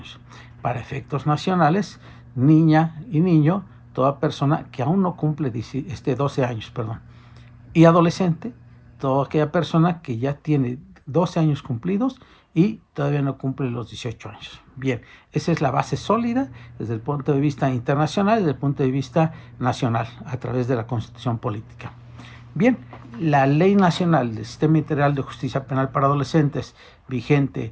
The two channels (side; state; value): both; identical; correlation 1.00